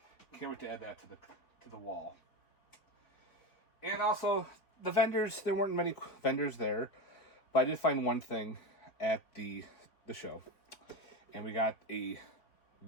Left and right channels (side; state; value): right; late; 4.4 ms